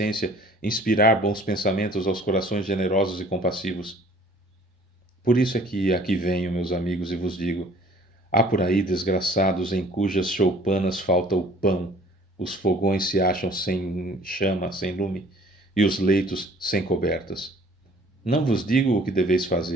inspirar bons pensamentos aos corações generosos e compassivos. Por isso é que aqui venho, meus amigos, e vos digo, há por aí desgraçados em cujas choupanas falta o pão, os fogões se acham sem chama, sem lume, e os leitos sem cobertas. Não vos digo o que deveis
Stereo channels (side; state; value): both; normal; correlation 0.53